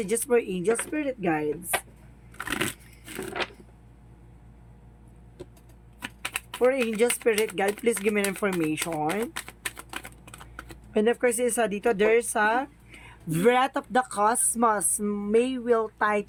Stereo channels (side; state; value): both; identical; correlation 1.00